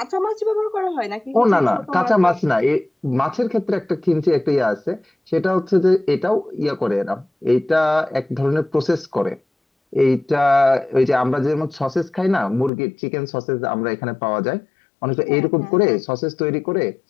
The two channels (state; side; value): drops out; right; at 12.7 s